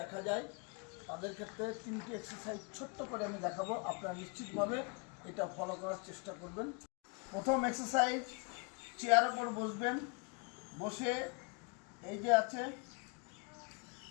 যায় তাদের ক্ষেত্রে 3টি এক্সারসাইজ ছোট্ট করে আমি দেখাবো। আপনারা নিশ্চিতভাবে এটা ফলো করার চেষ্টা করবেন। প্রথম এক্সারসাইজ, চেয়ারের উপর বসবেন। বসে এই যে আছে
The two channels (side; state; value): right; quieter; 33.1 dB